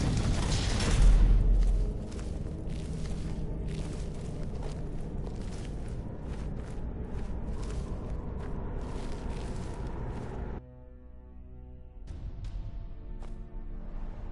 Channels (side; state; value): both; identical; correlation 1.00